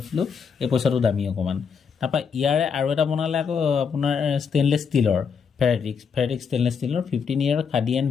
দিলোঁ, এই পইচাটো দামী অকণমান। তাৰপৰা ইয়াৰে আৰু এটা বনালে আকৌ আপোনাৰ ষ্টেইনলেছ ষ্টীলৰ, ফেৰেটিক ষ্টেইনলেছ ষ্টীলৰ 15 year khadi and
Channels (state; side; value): quieter; right; 6.3 dB